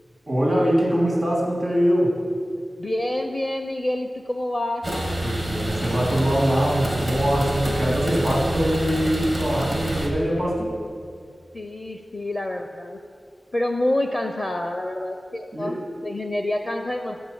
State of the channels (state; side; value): normal; both; correlation 0.96